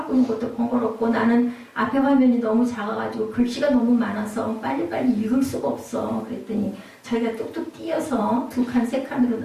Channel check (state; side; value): identical; both; correlation 1.00